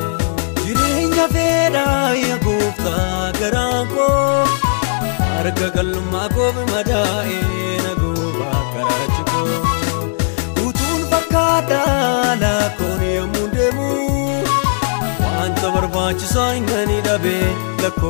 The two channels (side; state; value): right; silent; digital silence